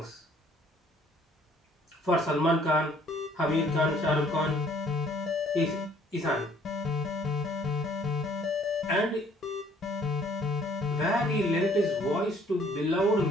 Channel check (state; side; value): normal; both; correlation 0.60